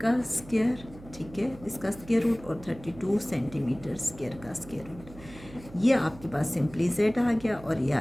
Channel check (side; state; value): right; noise; hum, 18 dB below the sound